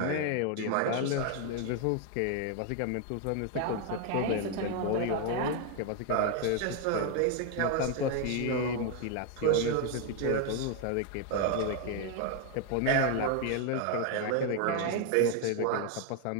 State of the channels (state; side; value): different; both; correlation 0.01